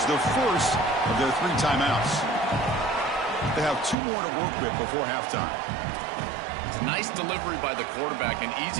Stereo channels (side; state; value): left; drops out; at 4.0 s